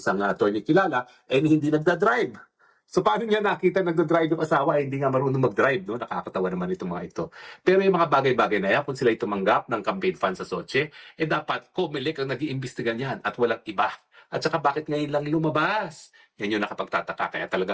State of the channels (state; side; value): identical; both; correlation 1.00